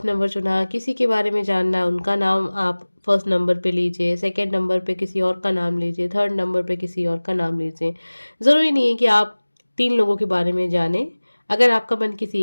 नंबर चुना, किसी के बारे में जानना है, उनका नाम आप फर्स्ट नंबर पे लीजिए, सेकंड नंबर पे किसी और का नाम लीजिए, थर्ड नंबर पे किसी और का नाम लीजिए। ज़रूरी नहीं है कि आप 3 लोगों के बारे में जानें। अगर आपका मन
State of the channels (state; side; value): inverted; both; correlation -1.00